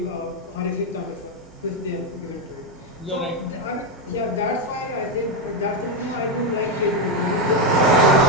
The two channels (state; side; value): normal; both; correlation 0.06